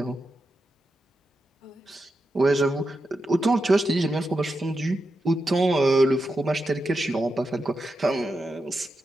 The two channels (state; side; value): normal; both; correlation 0.88